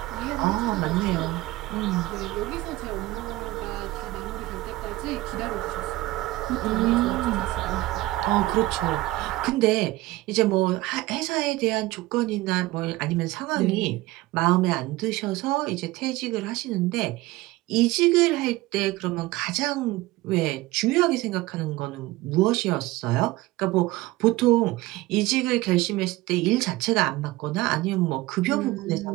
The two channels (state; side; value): quieter; left; 18.7 dB